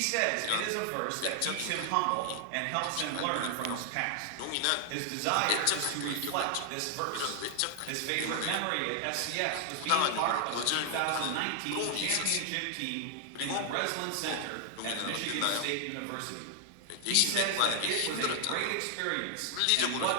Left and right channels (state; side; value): different; both; correlation 0.00